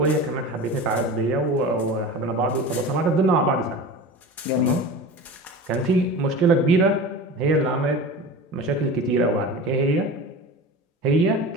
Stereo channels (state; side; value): normal; both; correlation 0.33